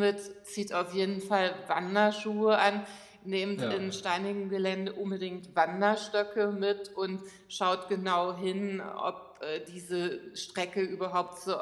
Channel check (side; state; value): both; identical; correlation 1.00